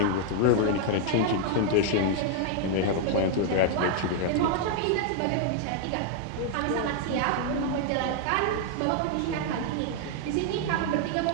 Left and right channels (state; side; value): different; both; correlation 0.00